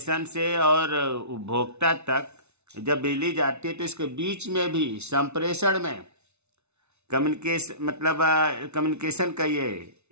से और उपभोक्ता तक जब बिजली जाती है तो इसके बीच में भी संप्रेषण में कम्युनिकेशन का ये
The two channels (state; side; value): late; left; 0.81 ms